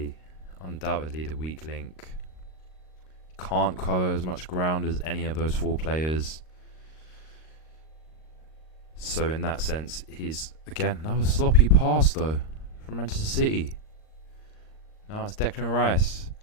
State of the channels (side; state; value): right; late; 38 ms